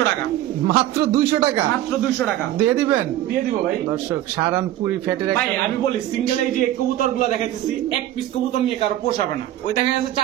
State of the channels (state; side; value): quieter; left; 13.6 dB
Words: টাকা, মাত্র 200 টাকা। মাত্র 200 টাকা দিয়ে দিবেন? দিয়ে দিব ভাই। দর্শক সাহারানপুরি ফ্যাটের ভাই একটা আমি বলি, সিঙ্গেল এই যে কবুতর গুলো দেখাইতেছি, এক পিস কবুতর নিয়ে কারো পোষাবে না। ওই দেখা যাচ্ছে